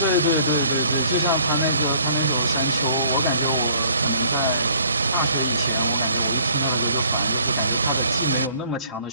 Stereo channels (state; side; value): inverted; both; correlation -0.57